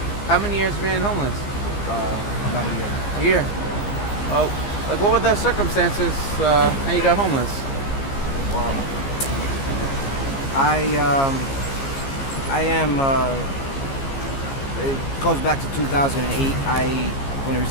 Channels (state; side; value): late; right; 15 ms